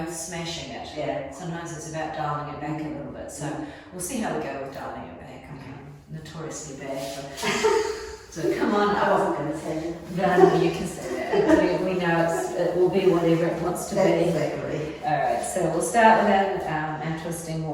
smashing it. Yeah. Sometimes it's about dialing it back a little bit. So we'll see how we go with dialing it back. I'm notoriously bad for so come on. I wasn't going to say that. No, you can say that. We know it will be whatever it wants to be. Exactly. Alright, so we'll start with our twisting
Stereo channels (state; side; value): identical; both; correlation 1.00